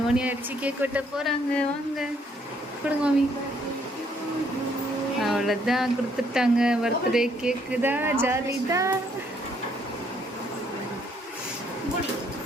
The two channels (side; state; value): both; normal; correlation 0.68